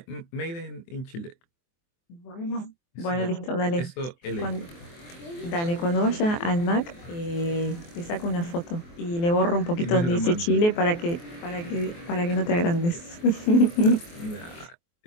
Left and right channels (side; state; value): right; late; 23 ms